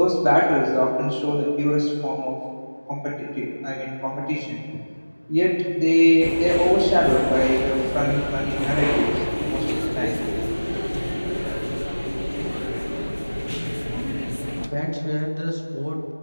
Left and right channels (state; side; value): inverted; both; correlation -1.00